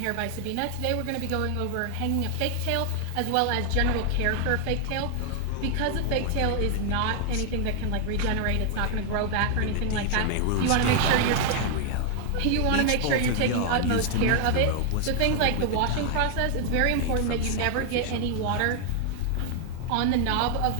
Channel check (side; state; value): both; different; correlation 0.00